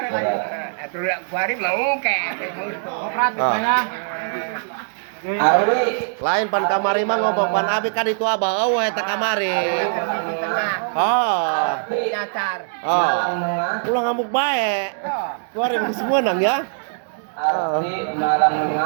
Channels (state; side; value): silent; left; digital silence